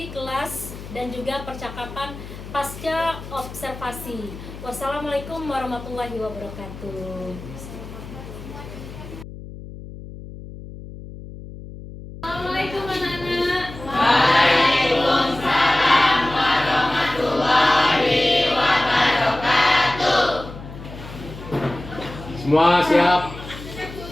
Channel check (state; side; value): noise; left; hum, 13 dB below the sound